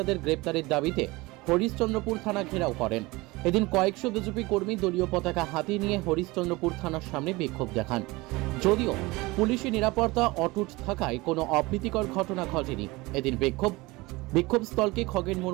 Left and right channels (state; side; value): quieter; left; 22.3 dB